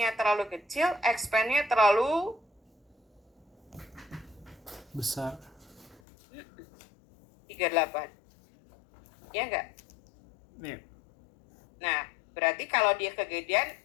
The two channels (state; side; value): drops out; right; at 6.0 s